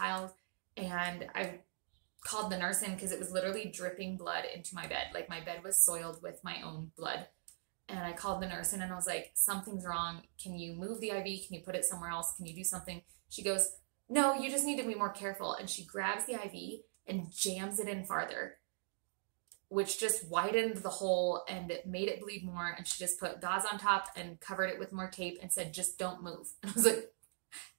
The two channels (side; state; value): left; silent; digital silence